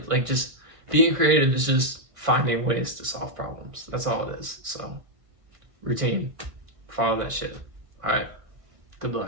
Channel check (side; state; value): left; late; 1.5 ms